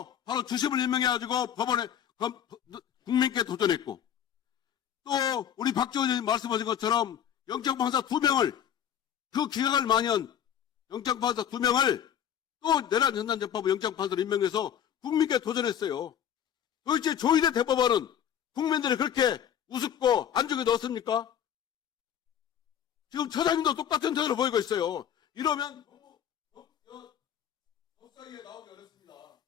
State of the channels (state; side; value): quieter; right; 9.4 dB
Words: 바로 주심을 임명해가지고 법원에, 국민께 도전했고, 또, 우리 박지원 의원님 말씀하신 것처럼 영장판사 2명을, 그 기각을 만연 영장판사 2명을 또 내란 전단재판부 영장판사로 임명해서 국민께 도전했어요. 도대체 조희대 대법원은 국민들이 그렇게 우습고 안중에 넣었습니까? 지금 처장님도 똑같은 태도를 보이고 있어요. 이러면 법사위에 나오기 어렵습니다.